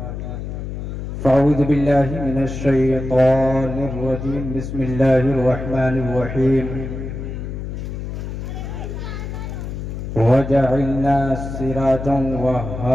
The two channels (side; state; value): left; noise; hum, 6 dB below the sound